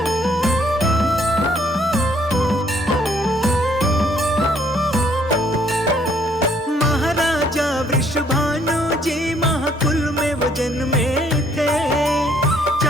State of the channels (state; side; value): normal; both; correlation 0.65